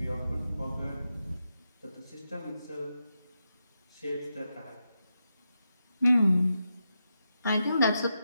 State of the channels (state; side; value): inverted; both; correlation -0.86